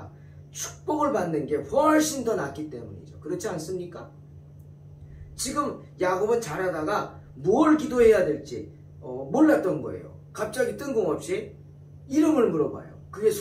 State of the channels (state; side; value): identical; both; correlation 1.00